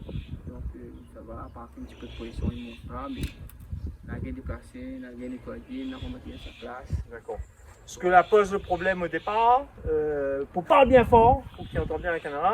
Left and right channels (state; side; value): identical; both; correlation 1.00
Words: Donc ça va, à part un petit peu de position, il ne monte pas, mais la gaine déplacée, la gaine nettoyée, la remettre à sa place. D'accord. Ce que la pose le problème au départ, pour parler bien fort, pour qu'il entende bien la